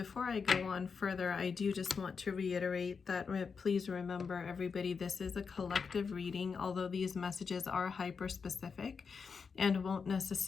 I go on further, I do just want to reiterate that please remember, everybody, this is a collective reading, although these messages are hyper-specific and won't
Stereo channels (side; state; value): right; quieter; 5.5 dB